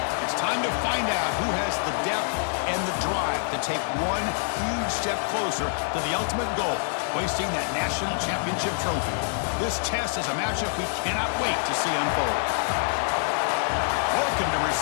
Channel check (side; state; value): right; silent; digital silence